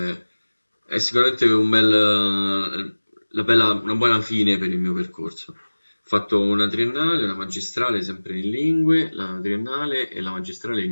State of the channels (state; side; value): inverted; both; correlation -1.00